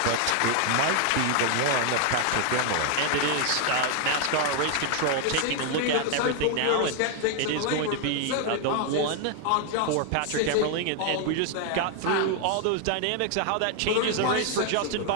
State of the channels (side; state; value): both; different; correlation 0.00